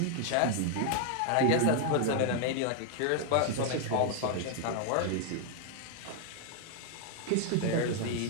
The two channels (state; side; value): different; both; correlation 0.00